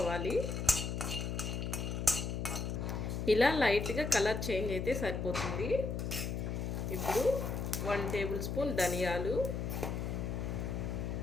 ఇలా లైట్గా కలర్ చేంజ్ అయితే సరిపోతుంది. ఇప్పుడు 1 టేబుల్ స్పూన్ ధనియాలు,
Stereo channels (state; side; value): noise; left; hum, 2 dB below the sound